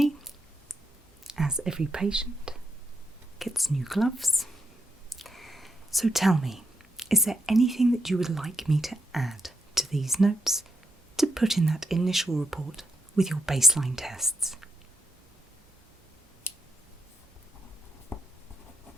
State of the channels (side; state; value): both; normal; correlation 0.81